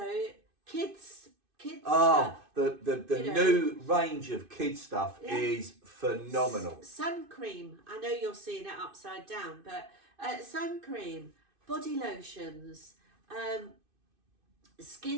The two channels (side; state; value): left; late; 2.5 ms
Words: kids stuff. The you new range of kids stuff is phenomenal. Sun cream. I know you're seeing it upside down, but sun cream, body lotions,